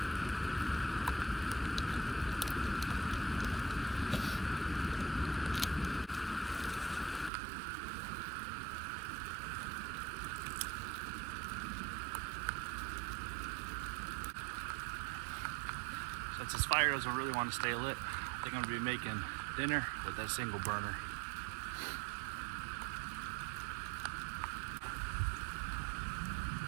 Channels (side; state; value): left; drops out; at 7.3 s